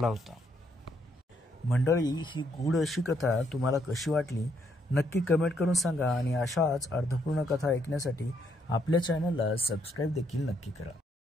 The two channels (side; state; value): both; normal; correlation 0.73